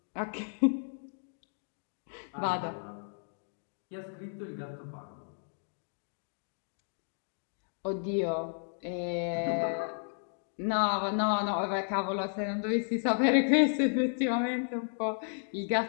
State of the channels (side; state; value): right; silent; digital silence